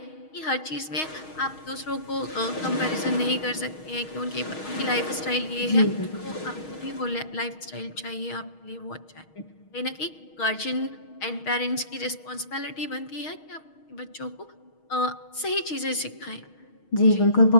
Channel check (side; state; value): right; late; 6.4 ms